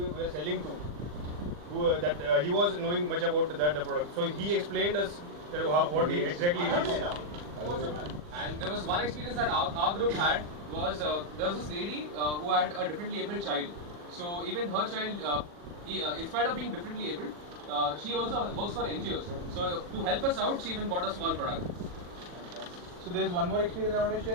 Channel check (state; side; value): late; left; 40 ms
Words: selling to, he was knowing much about the product. So he explained us that what exactly it is. And there was one experience that our group had was there was this lady who had a differently abled child. So even her child, in spite of being differently abled, she also works for NGOs. So to help us out, she even bought a small product. So there's one more experience I want to